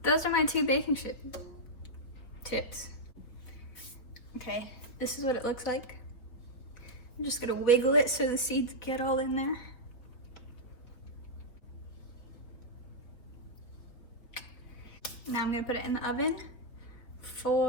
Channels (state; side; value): late; right; 4.0 ms